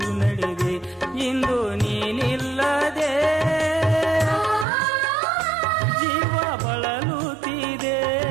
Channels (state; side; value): drops out; left; at 4.7 s